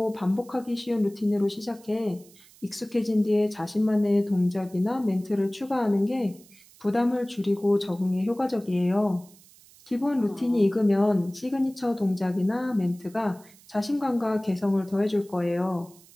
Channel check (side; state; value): right; noise; hiss, 25 dB below the sound